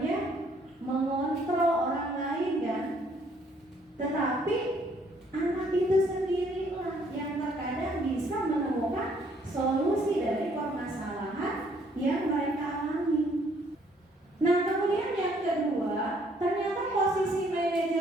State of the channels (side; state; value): both; normal; correlation 0.65